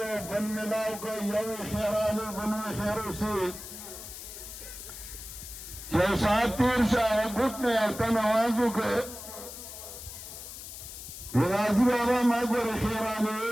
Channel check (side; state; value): left; noise; hiss, 11 dB below the sound